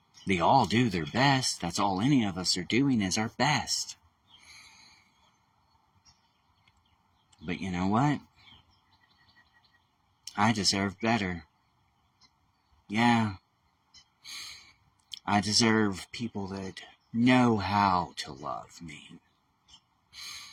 They all do their best. That's all any of us are doing is our best. But you know what? I deserve better. Yeah. I deserve people that know how to love me.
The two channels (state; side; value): identical; both; correlation 1.00